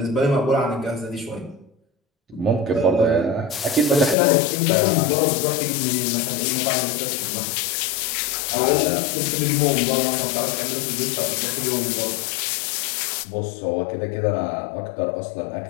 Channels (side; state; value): right; drops out; at 4.2 s